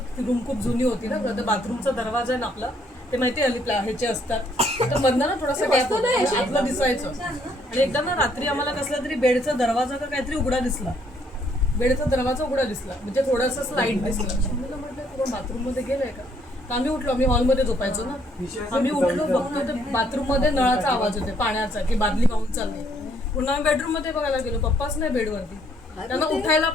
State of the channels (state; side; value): normal; both; correlation 0.68